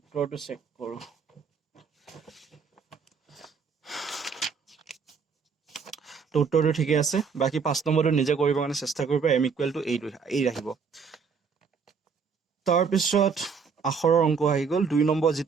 চেক কৰো তো উত্তৰটো ঠিকে আছে বাকি 5 নম্বৰটো নিজে কৰিব কাৰণে চেষ্টা কৰিবা m = এই ৰাখিব তাৰ পিছত আখৰৰ অংক আহি গল 2 নম্বৰ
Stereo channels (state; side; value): quieter; left; 5.8 dB